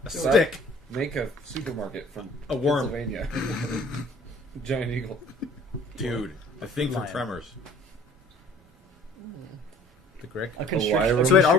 A so stick. Make a supermarket from A worm. Pennsylvania. Giant eagle. Dude, the thing from Lion. Tremors. The Grick. A wire constrictor. room. So wait, are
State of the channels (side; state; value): both; normal; correlation 0.52